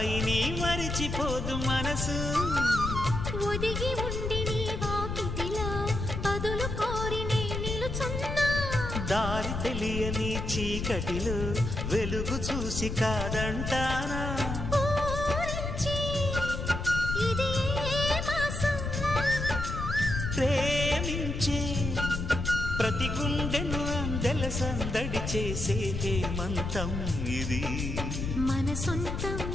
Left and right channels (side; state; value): left; noise; rumble, 3 dB below the sound